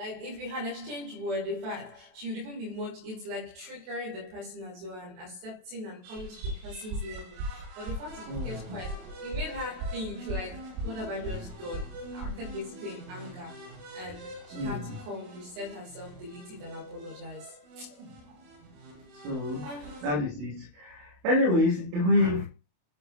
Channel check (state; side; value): late; left; 27 ms